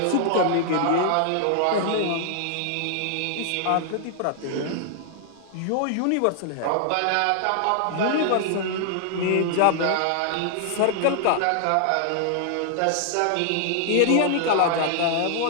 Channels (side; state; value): both; different; correlation -0.01